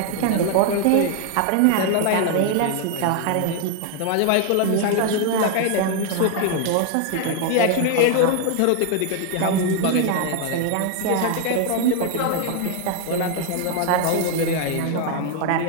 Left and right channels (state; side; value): different; both; correlation 0.00